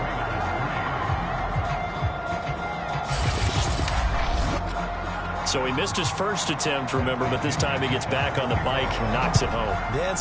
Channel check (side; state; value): both; identical; correlation 1.00